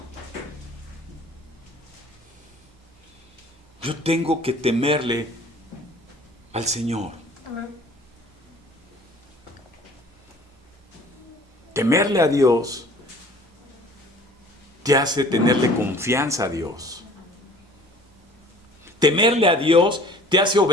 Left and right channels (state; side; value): normal; both; correlation 0.50